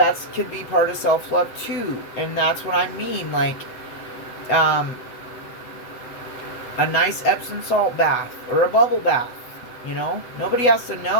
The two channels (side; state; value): right; late; 8.1 ms